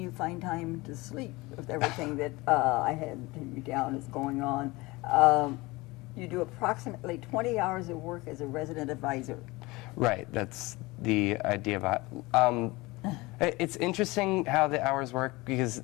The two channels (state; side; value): quieter; right; 22.3 dB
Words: find time to sleep with everything that I had you down is going on. You do approximately 20 hours of work as a resident advisor. Right. That's the idea about it's interesting how the hours work, because